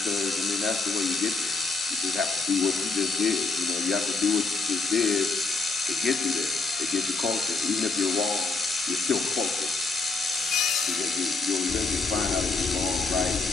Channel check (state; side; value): quieter; right; 3.9 dB